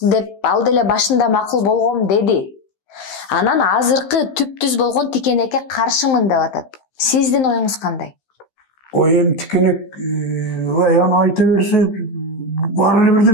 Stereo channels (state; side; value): late; right; 15 ms